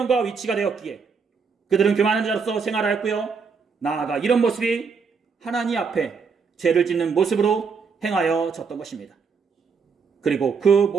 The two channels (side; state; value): left; quieter; 5.4 dB